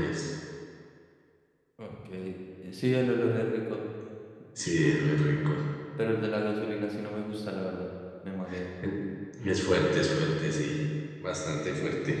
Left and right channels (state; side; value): identical; both; correlation 1.00